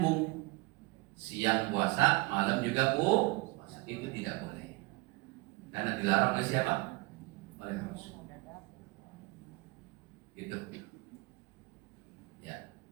Siang puasa, malam juga puasa. Itu tidak boleh. Karena dilarang oleh siapa? Oleh Rasul. Gitu. Ya.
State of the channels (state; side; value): quieter; left; 24.2 dB